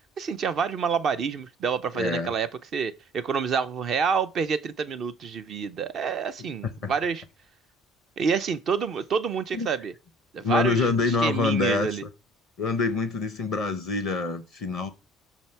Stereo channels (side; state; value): both; normal; correlation 0.51